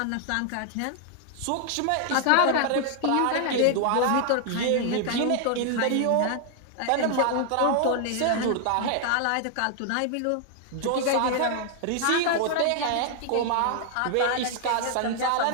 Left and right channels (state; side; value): different; both; correlation 0.00